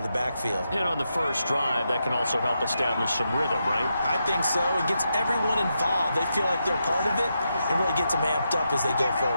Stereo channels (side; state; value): both; inverted; correlation -0.85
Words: the backfield. And on the first drive, that can also help establish some rhythm, right? I think so. It gets everyone involved. They feel like they're part of it. It really gets them amped up as they go